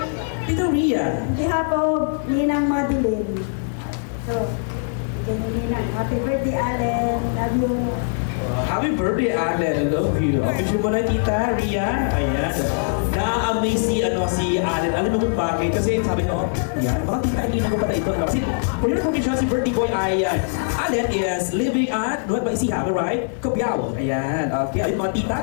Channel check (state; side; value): silent; right; 64 dB below the other